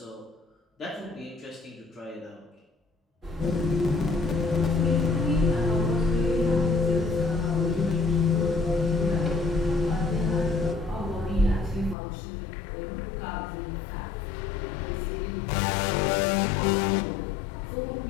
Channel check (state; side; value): drops out; right; at 12.0 s